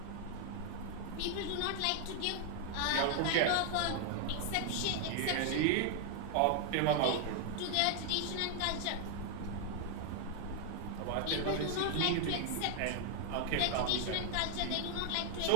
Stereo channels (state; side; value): different; both; correlation 0.00